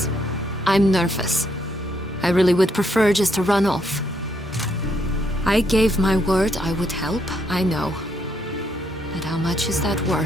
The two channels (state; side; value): normal; both; correlation 0.74